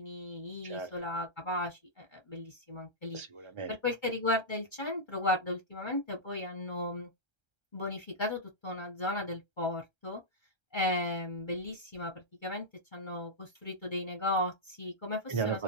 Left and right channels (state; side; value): late; right; 1.3 ms